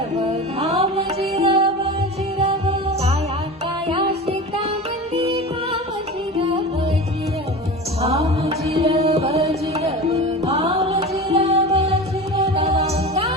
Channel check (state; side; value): normal; both; correlation 0.31